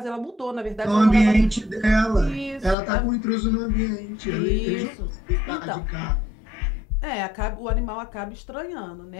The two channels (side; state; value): right; drops out; at 2.8 s